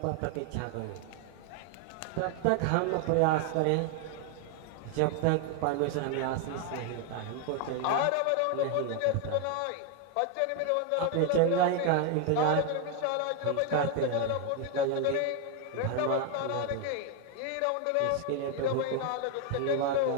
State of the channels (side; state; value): both; different; correlation 0.01